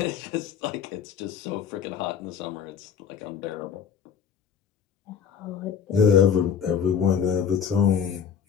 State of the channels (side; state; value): right; quieter; 7.3 dB